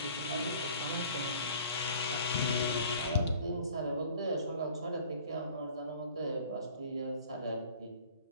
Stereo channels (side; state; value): both; inverted; correlation -0.50